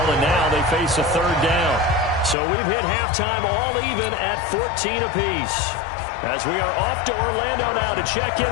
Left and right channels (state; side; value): drops out; right; at 2.4 s